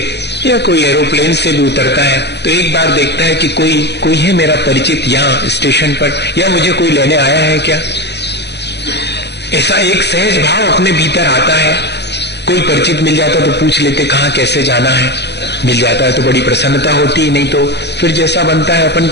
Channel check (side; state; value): right; late; 0.50 ms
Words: या कोई एरोप्लेन से भी उतरता है, तो एक बार देखता है कि कोई है मेरा परिचित यहाँ स्टेशन पर, या मुझे कोई लेने आया है क्या। ऐसा एक सहज भाव अपने भीतर आता है। कोई परिचित मिल जाता तो पूछ लेते कहाँ कैसे जाना है, मिल जाता है तो बड़ी प्रसन्नता होती, नहीं तो फिर जैसा बनता है अपन